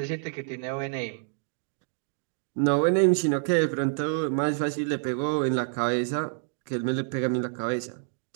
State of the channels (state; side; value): silent; left; digital silence